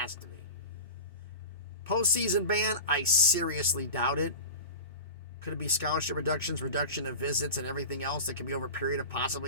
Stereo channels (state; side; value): inverted; both; correlation -0.32